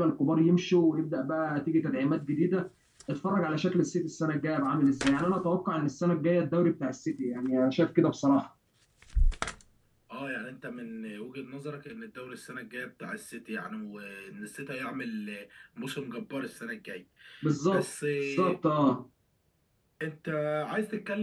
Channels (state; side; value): identical; both; correlation 1.00